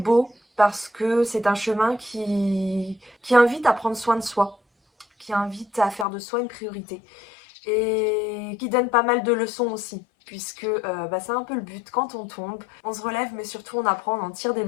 parce que c'est un chemin qui invite à prendre soin de soi, qui invite à faire de soi une priorité. et qui donne pas mal de leçons aussi. Puisque c'est un peu le but, quand on tombe, on se relève mais surtout on apprend, on en tire des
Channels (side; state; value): right; drops out; at 6.1 s